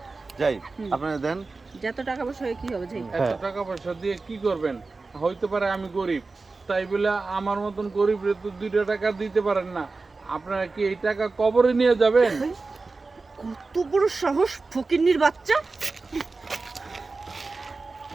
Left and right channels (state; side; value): quieter; left; 3.8 dB